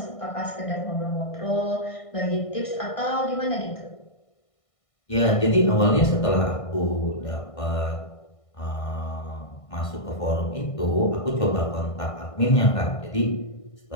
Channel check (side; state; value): right; late; 1.6 ms